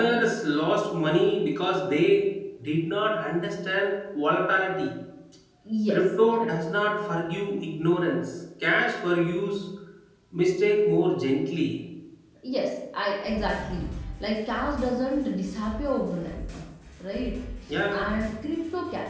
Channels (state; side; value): identical; both; correlation 1.00